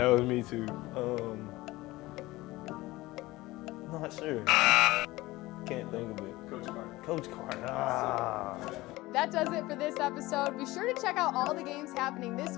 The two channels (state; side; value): quieter; right; 19.3 dB